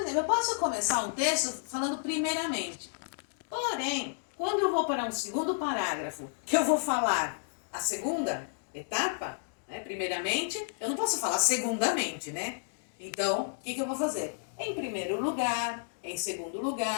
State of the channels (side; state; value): right; silent; digital silence